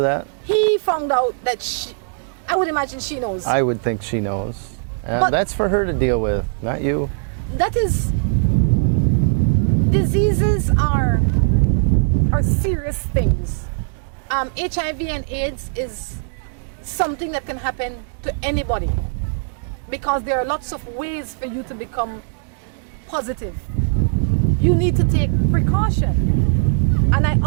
He found out that I would imagine she knows. I would think she knows. But that's for her to deal with, not you. That is, diseases are serious things. HIV and AIDS is something that can happen to anybody because there are lots of ways for you to become positive. You need to take precaution.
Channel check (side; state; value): left; silent; digital silence